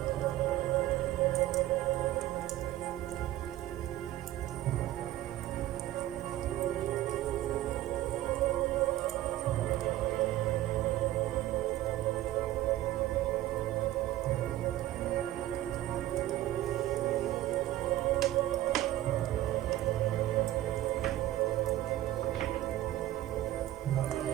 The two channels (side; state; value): left; quieter; 14.6 dB